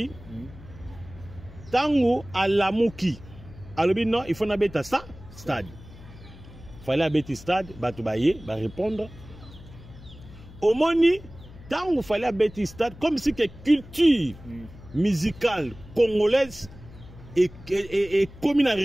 tango à la mouki. Alors non, il faut n'habiter ça stade. Fallait habiter stade, batubaye, va répondre. Au moni, tango fallait habiter stade comme si que culture musicale congolaise et comme un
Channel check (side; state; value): left; noise; hum, 19 dB below the sound